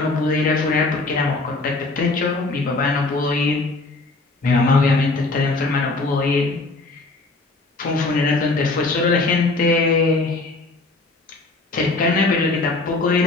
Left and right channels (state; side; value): quieter; right; 3.3 dB